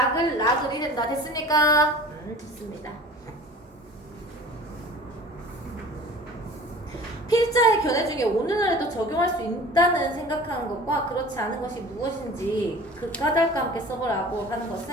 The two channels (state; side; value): normal; both; correlation 0.43